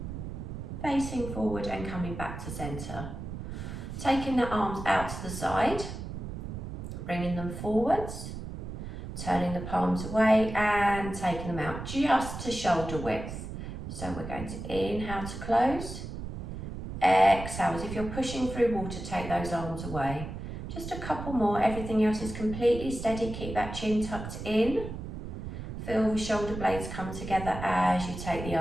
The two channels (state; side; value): noise; right; rumble, 8 dB below the sound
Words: Facing forward and coming back to center. Taking the arms out to the side, bringing them forwards, turning the palms away and taking them out just to shoulder width. So we're going to inhale to close. Exhale, as if you're pushing through water, take those arms away. Just a couple more, everything else is completely steady. Keep that chin tucked in. Feel the shoulder blades come together as you take the